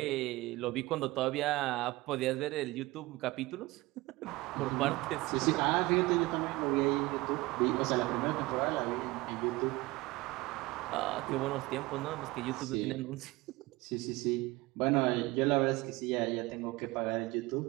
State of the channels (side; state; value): left; quieter; 20.9 dB